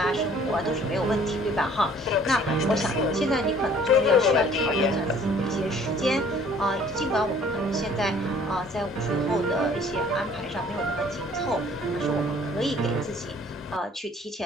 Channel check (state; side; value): normal; both; correlation 0.55